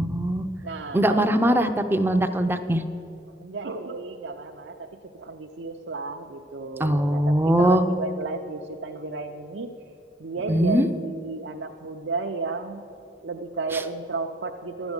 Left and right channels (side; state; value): both; normal; correlation 0.66